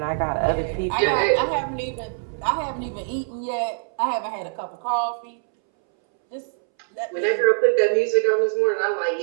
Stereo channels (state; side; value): silent; left; 63 dB below the other